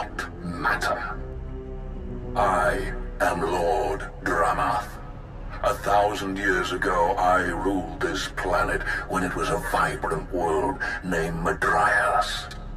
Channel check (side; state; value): both; identical; correlation 1.00